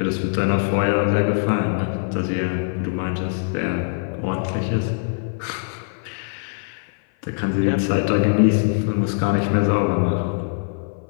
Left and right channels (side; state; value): right; silent; 56 dB below the other